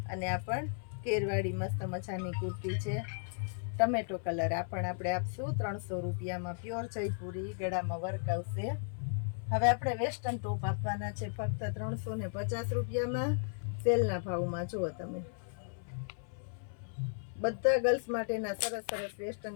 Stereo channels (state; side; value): silent; right; 54 dB below the other